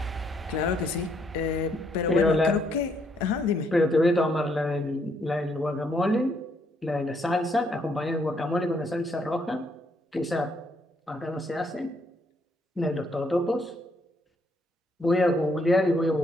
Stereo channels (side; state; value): both; normal; correlation 0.72